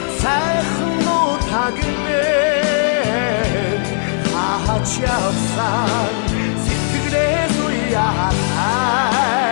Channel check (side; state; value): right; silent; digital silence